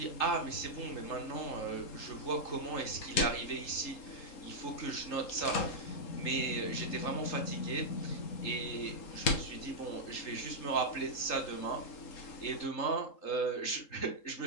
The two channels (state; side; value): late; right; 3.8 ms